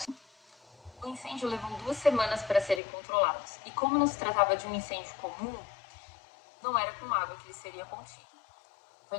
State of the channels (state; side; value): drops out; right; at 2.8 s